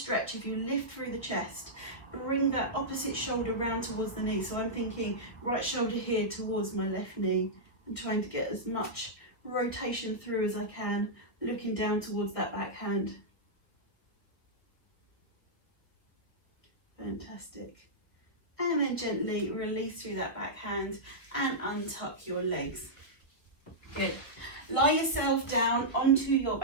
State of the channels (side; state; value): right; late; 1.4 ms